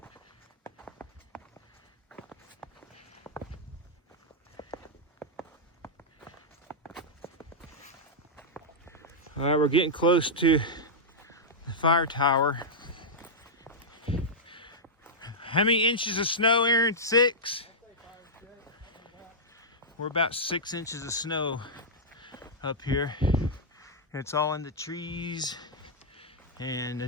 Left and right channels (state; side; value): normal; both; correlation -0.09